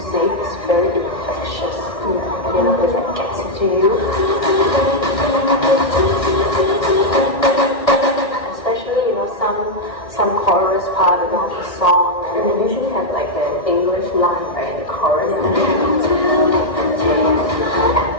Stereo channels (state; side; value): late; right; 1.6 ms